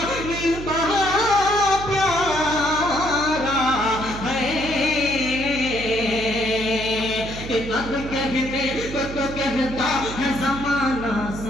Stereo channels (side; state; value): right; noise; hum, 10 dB below the sound